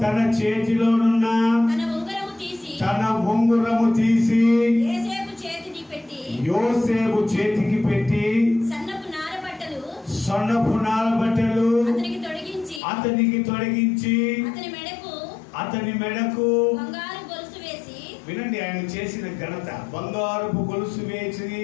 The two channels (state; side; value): drops out; right; at 12.8 s